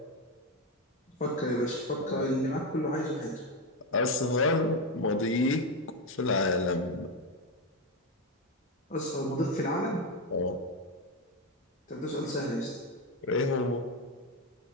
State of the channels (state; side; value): normal; both; correlation 0.11